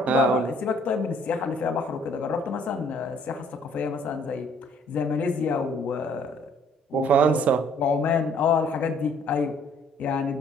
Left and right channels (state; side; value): normal; both; correlation 0.60